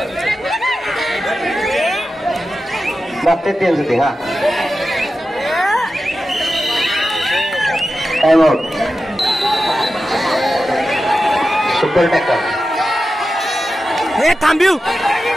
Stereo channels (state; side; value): normal; both; correlation 0.92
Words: बघतात त्यांचं ते. हा टाइम आउट. Super tackle. हे थांबिव